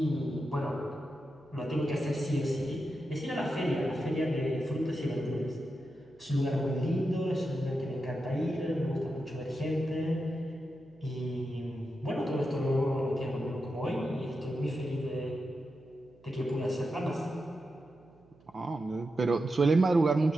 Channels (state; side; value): noise; right; hum, 28 dB below the sound